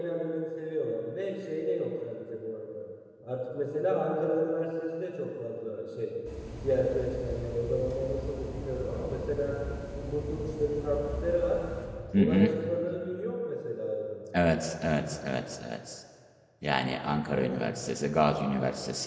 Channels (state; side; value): identical; both; correlation 1.00